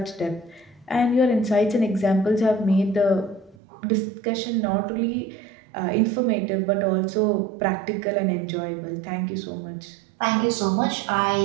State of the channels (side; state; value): left; drops out; at 3.6 s